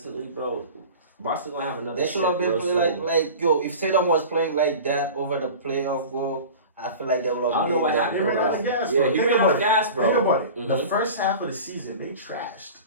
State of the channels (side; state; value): both; inverted; correlation -0.36